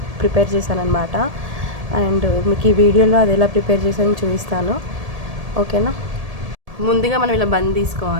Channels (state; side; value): late; left; 1.7 ms